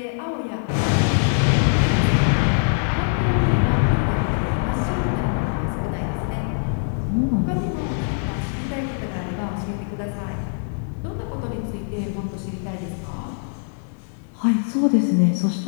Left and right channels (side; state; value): right; silent; 64 dB below the other